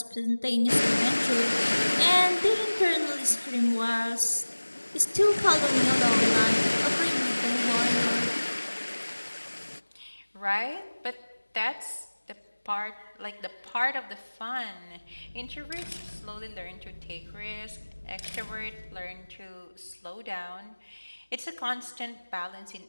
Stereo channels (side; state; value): both; inverted; correlation -1.00